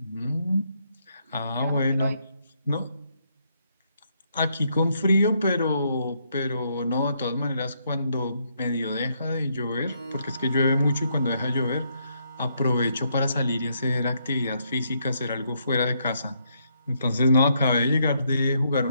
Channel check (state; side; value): inverted; both; correlation -0.75